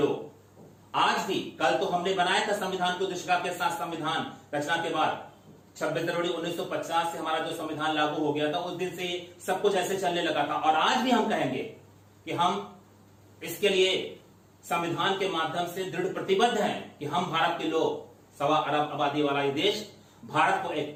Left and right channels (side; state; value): both; identical; correlation 1.00